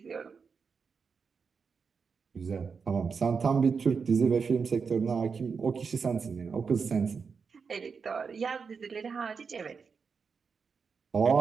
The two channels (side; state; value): left; quieter; 5.5 dB